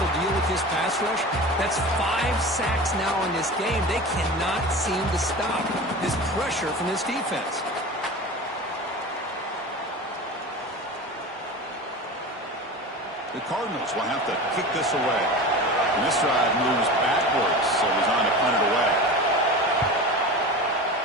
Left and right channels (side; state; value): both; normal; correlation 0.31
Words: deal with this pass rush? That's 5 sacks now in this game. They cannot seem to stop this pressure from this defense. The Cardinals will have to kick this away. And this drive moves backwards, so he's on to punt it away.